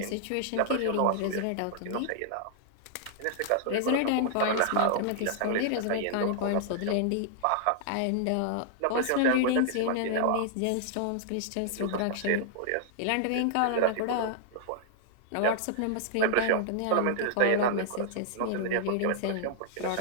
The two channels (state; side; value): different; both; correlation -0.01